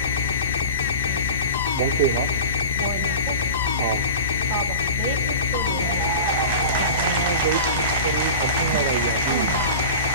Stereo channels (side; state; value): both; inverted; correlation -0.33